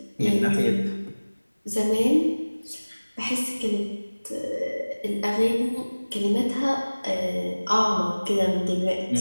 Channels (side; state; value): both; inverted; correlation -1.00